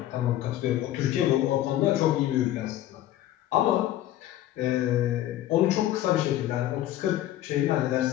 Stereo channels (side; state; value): right; quieter; 13.6 dB